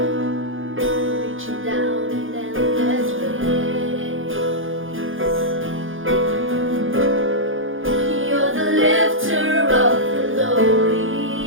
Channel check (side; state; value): left; late; 0.58 ms